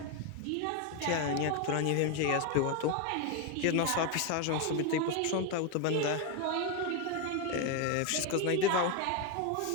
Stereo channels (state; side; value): different; both; correlation 0.02